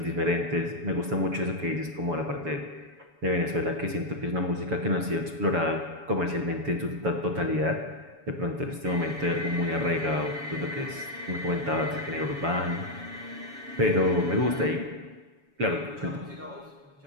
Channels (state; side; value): late; left; 7.1 ms